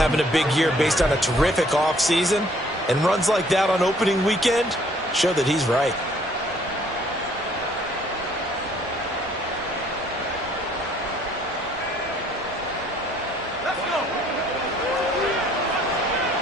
a big year based on a terrific offseason. And runs like that on opening weekend show that he's right.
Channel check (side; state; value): both; normal; correlation 0.61